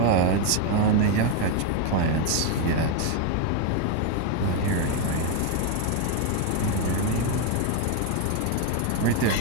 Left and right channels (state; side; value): different; both; correlation 0.01